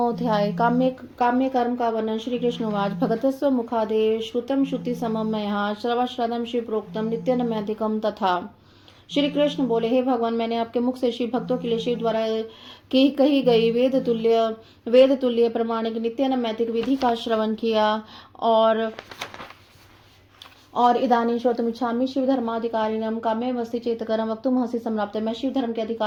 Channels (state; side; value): identical; both; correlation 1.00